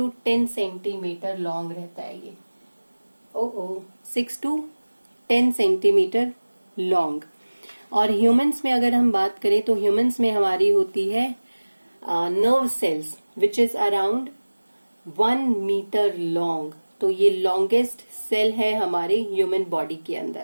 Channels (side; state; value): both; inverted; correlation -1.00